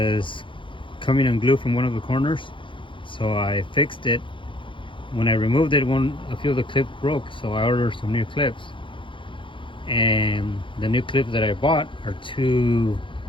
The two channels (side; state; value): right; late; 0.24 ms